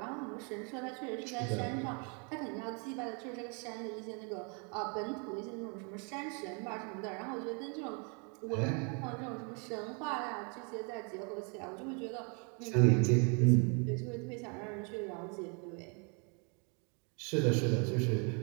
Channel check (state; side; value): quieter; left; 36.0 dB